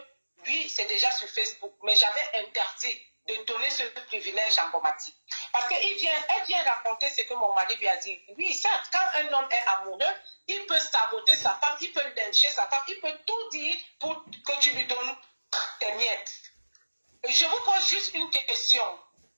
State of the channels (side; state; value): both; inverted; correlation -1.00